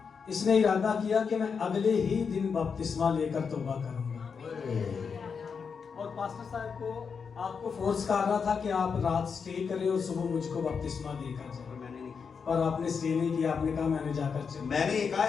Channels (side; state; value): right; quieter; 5.9 dB